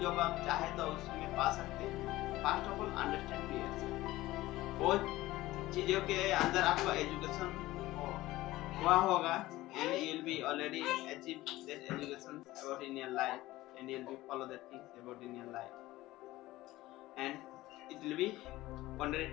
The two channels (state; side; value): quieter; right; 17.4 dB